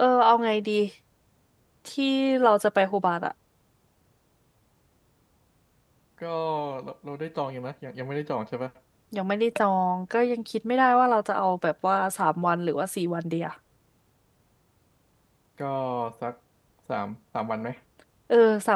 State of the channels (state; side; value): identical; both; correlation 1.00